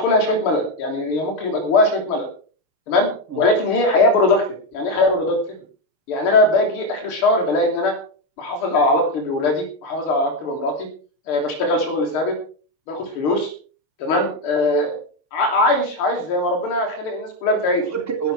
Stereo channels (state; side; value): late; right; 6.6 ms